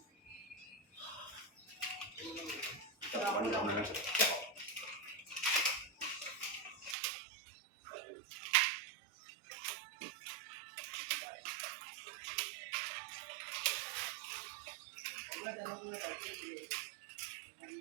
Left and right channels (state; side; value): drops out; left; at 7.0 s